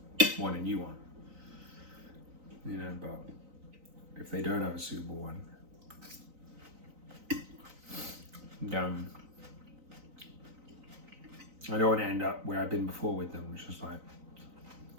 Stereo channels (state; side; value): late; left; 3.9 ms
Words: want a new one, you know. But if they don't have a suitable one, then I don't want to end up where I've been before with them, which is like,